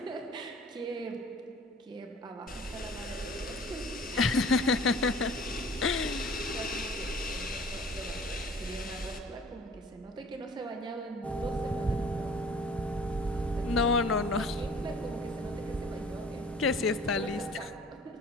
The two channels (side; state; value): both; normal; correlation 0.48